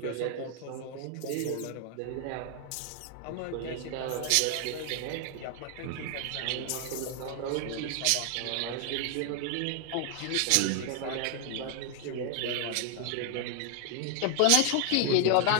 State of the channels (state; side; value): different; both; correlation 0.00